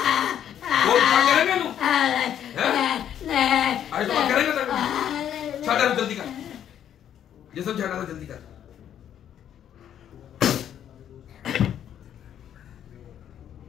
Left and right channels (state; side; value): quieter; right; 9.9 dB